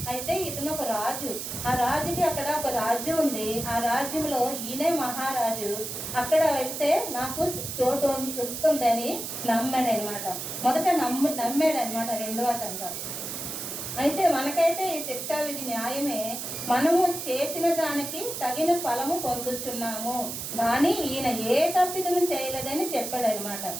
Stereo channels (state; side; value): noise; right; hiss, 6 dB below the sound